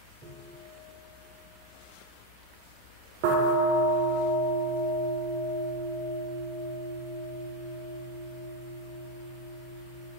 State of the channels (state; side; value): normal; both; correlation 0.05